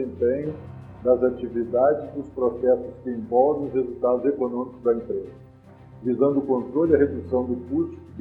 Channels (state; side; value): identical; both; correlation 1.00